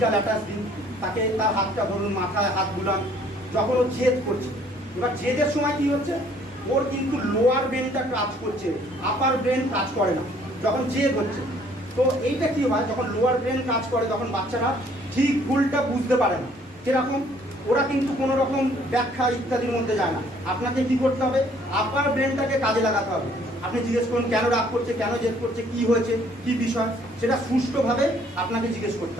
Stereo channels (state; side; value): normal; both; correlation 0.60